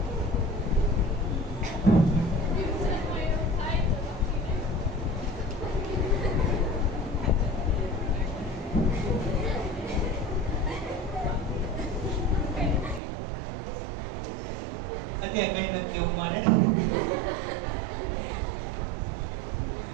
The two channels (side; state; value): left; drops out; at 13.0 s